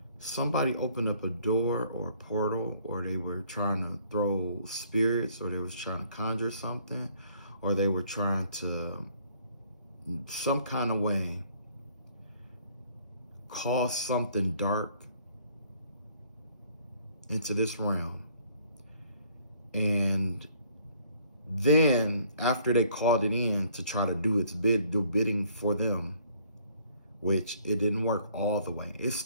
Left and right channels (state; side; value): inverted; both; correlation -0.61